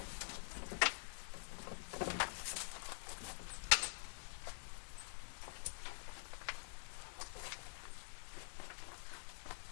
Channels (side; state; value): right; silent; digital silence